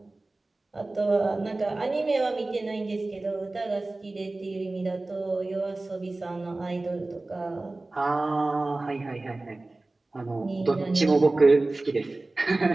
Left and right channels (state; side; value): quieter; left; 3.0 dB